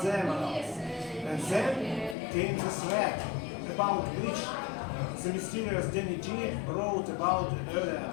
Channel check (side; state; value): right; drops out; at 2.1 s